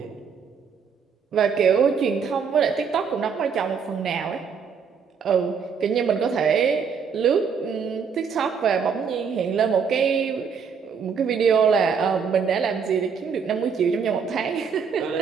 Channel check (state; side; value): quieter; left; 6.3 dB